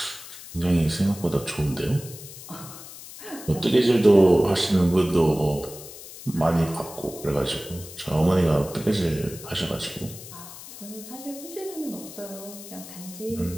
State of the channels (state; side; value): noise; left; hiss, 15 dB below the sound